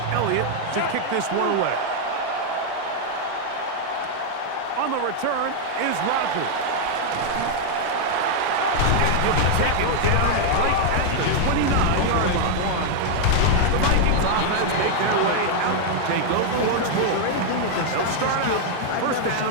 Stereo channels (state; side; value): different; both; correlation 0.00